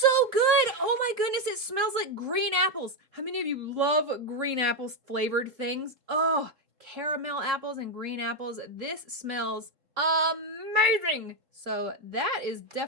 good. Oh my goodness, it smells like green apples. How many of you love green apples flavored things? Oh, caramel apples and green apples. This smells amazing. So that is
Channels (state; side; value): late; left; 3.7 ms